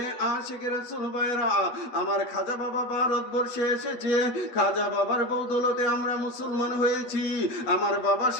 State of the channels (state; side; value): late; right; 8.3 ms